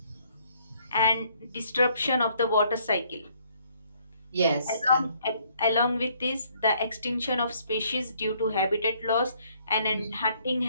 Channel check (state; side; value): inverted; both; correlation -0.65